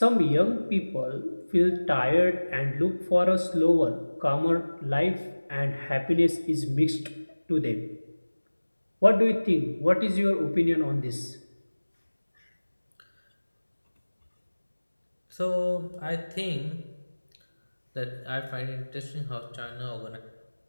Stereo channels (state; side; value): inverted; both; correlation -1.00